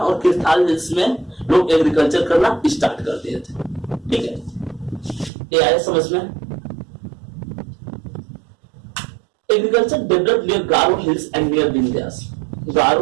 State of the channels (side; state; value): left; drops out; at 5.3 s